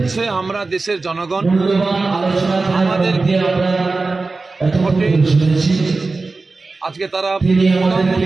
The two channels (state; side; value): quieter; left; 3.7 dB